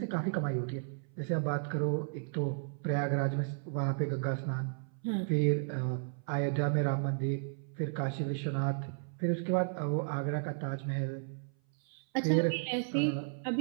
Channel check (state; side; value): silent; left; 55 dB below the other